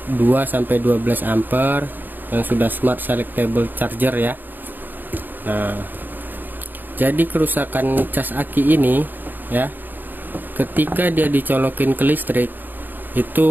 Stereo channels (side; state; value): left; late; 0.089 ms